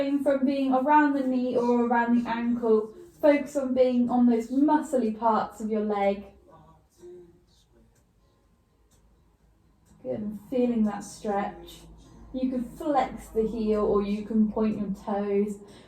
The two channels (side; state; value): both; identical; correlation 1.00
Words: from being around the knee or around the ankle. Focus on being on those muscly parts of your leg. Good, and feeling that stretch. You can flex the heel or you can point your toes,